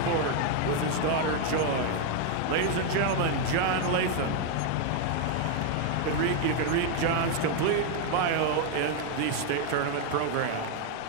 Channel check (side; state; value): both; different; correlation 0.00